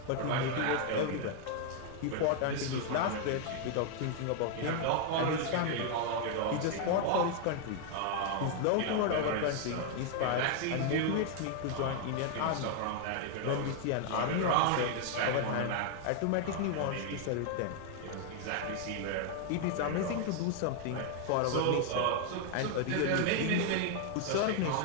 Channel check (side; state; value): both; different; correlation 0.00